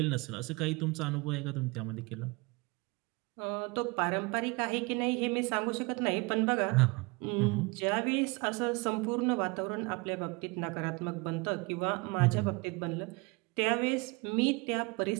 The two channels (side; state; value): left; quieter; 26.8 dB